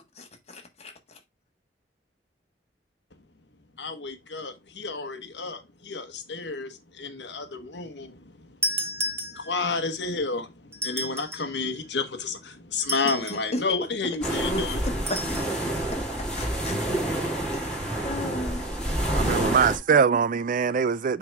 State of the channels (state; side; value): normal; both; correlation 0.10